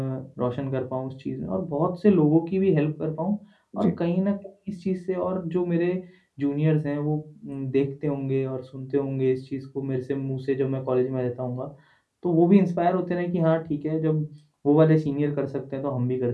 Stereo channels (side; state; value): both; identical; correlation 1.00